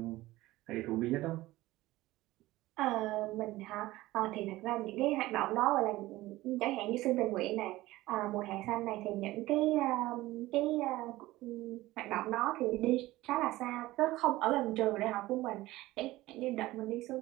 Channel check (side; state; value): left; quieter; 17.8 dB